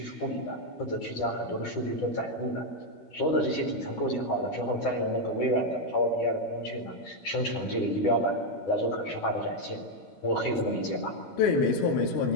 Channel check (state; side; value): late; right; 12 ms